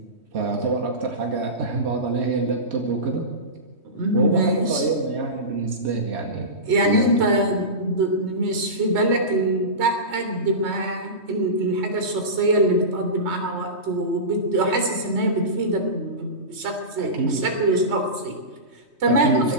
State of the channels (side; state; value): left; late; 3.2 ms